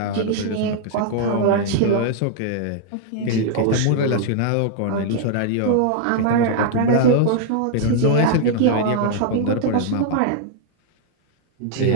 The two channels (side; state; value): both; different; correlation -0.01